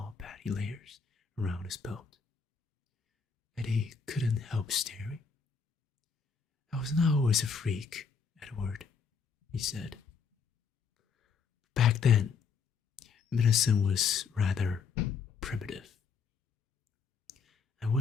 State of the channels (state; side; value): quieter; right; 5.7 dB